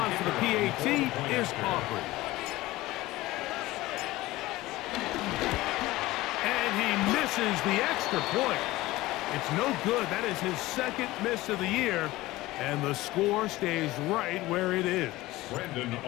for the PAT is Aubrey. And he misses the extra point. It's no good. That is his second miss of the year, and the score stays right where it is. Brandon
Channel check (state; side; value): quieter; right; 18.3 dB